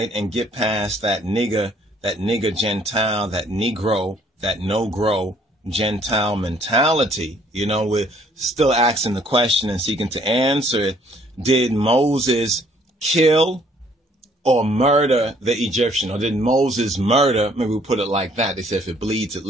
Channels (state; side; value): normal; both; correlation 0.62